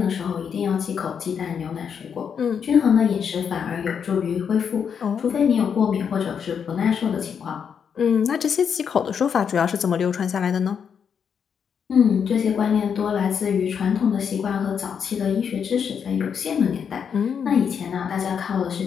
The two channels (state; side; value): quieter; right; 7.2 dB